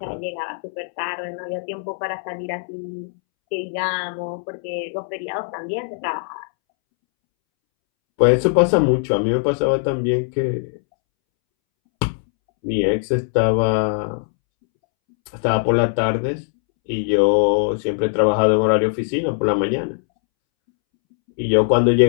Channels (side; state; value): right; silent; 65 dB below the other